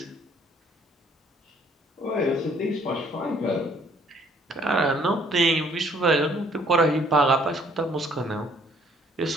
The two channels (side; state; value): both; normal; correlation 0.62